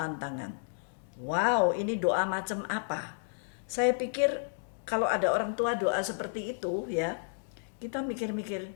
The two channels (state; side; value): silent; right; digital silence